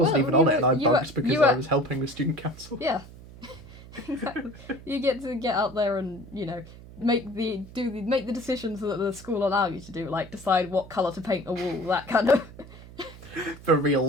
Well, even on it, and I bunked because I was helping with student council. Yeah. Exactly. You get to get out there and, make the decisions that the school allow you to do, like decide what colour to paint a wall, that kind of... For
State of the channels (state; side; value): noise; right; hum, 18 dB below the sound